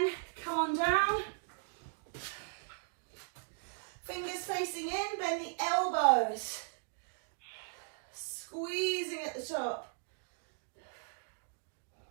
come on down. Fingers facing in, bend the elbows. Squeezing at the top.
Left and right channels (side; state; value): left; silent; digital silence